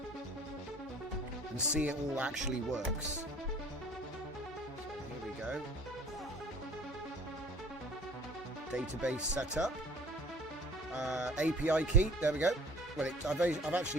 and see it all actually works. So here we go. Database setup. API key, there we go. Well, I've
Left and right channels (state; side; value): normal; both; correlation 0.50